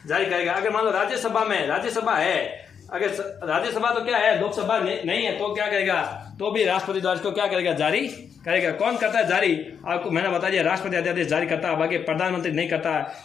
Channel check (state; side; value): quieter; right; 7.2 dB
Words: जारी करेगा। अगर मान लो राज्यसभा है, अगर राज्यसभा तो क्या है, लोकसभा नहीं है, तो क्या करेगा, तो भी राष्ट्रपति द्वारा इसको क्या करेगा, जारी करेगा। कौन करता है जारी, आपको मैंने बता दिया, राष्ट्रपति अध्यादेश जारी करता है, बाकी प्रधानमंत्री नहीं करता है।